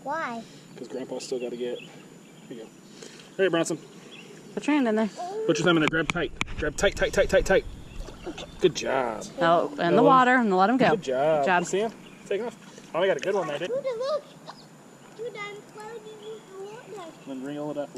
Why? Because Grandpa's still got to get. Here you go. All right, Bronson. Put your hand in there. Put your thumb in there. Grab tight. Grab tight, tight, tight, tight, tight. Good job. Oh, in the water and let him go. Good job. Good job. You see him? Taking off. Oh, we got a good one there, didn't we? Dude, look. Dude, I'm floating in the water. Then reel it up a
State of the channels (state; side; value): identical; both; correlation 1.00